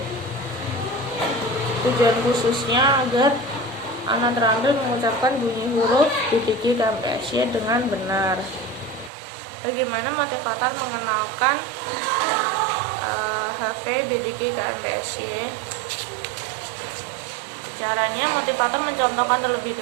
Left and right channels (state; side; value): drops out; left; at 9.1 s